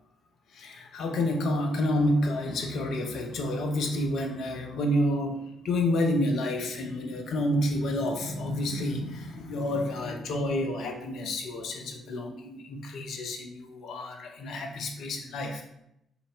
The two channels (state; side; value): normal; both; correlation 0.71